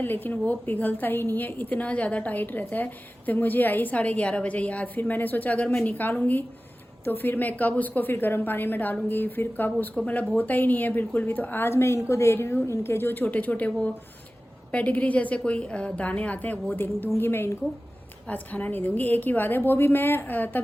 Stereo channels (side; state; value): both; normal; correlation 0.96